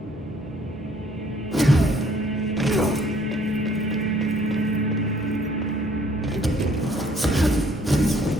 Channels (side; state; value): both; normal; correlation 0.62